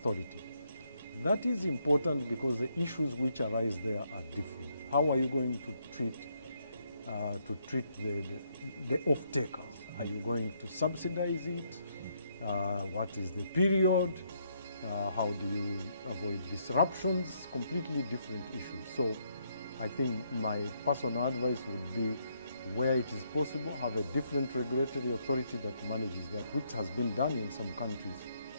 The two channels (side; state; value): both; inverted; correlation -0.74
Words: That is important because the issues which arise there are different. How are you going to treat the off-takers? Are you going to subsidize it? What is the period? How do you avoid disruptions? Completely different issues. So I think my personal advice would be, where it is possible, have a different regulatory authority that manages that, which has been done in some countries.